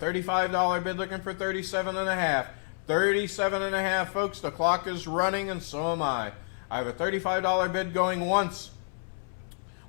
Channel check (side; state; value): right; silent; 59 dB below the other